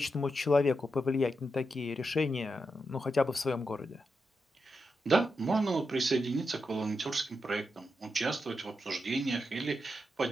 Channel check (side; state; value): both; normal; correlation 0.86